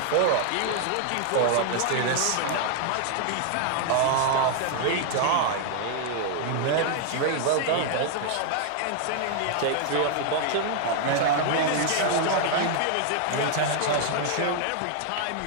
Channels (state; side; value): different; both; correlation 0.00